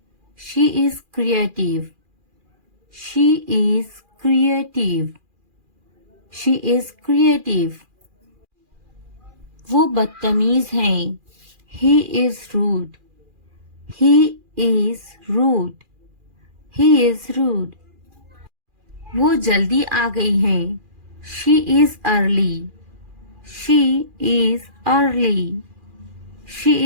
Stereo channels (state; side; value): late; left; 2.4 ms